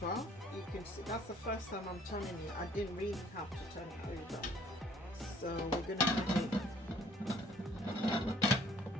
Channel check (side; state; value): both; normal; correlation 0.58